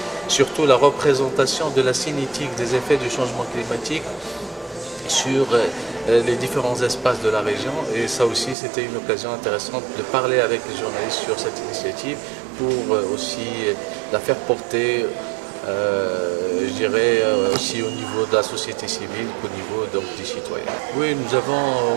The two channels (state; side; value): drops out; left; at 8.6 s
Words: surtout la représentation de la cinétique des effets du changement climatique sur les différents espaces de la région. Et ça aussi, c'était une occasion intéressante de parler avec les journalistes sur cette initiative pour aussi la faire porter je dirais aussi au niveau de la société civile qu'au niveau des citoyens. Oui, nous avons